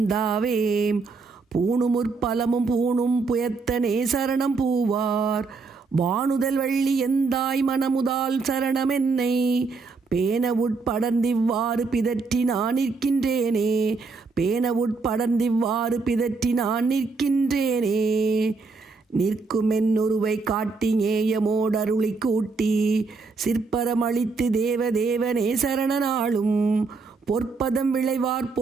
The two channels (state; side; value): quieter; left; 4.3 dB